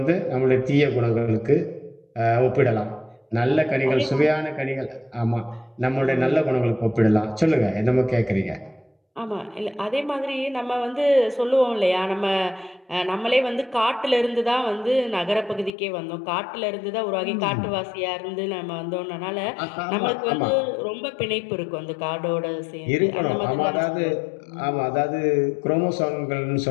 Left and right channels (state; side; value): drops out; right; at 15.7 s